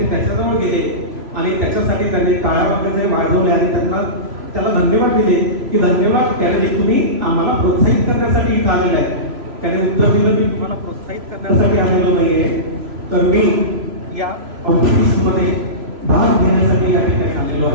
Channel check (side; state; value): left; late; 3.0 ms